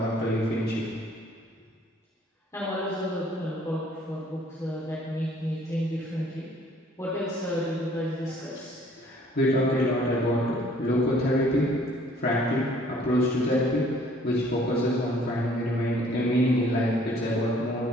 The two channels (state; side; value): normal; both; correlation 0.58